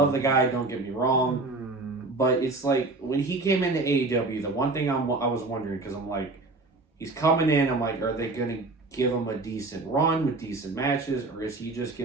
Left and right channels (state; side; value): quieter; left; 3.3 dB